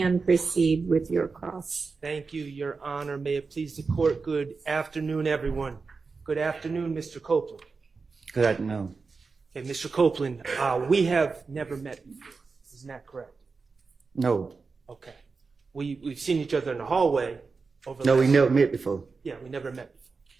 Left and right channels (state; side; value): quieter; left; 4.5 dB